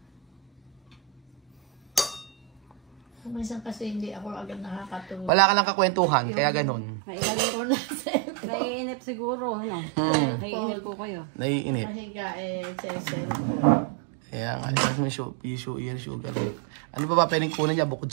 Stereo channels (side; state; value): left; drops out; at 5.3 s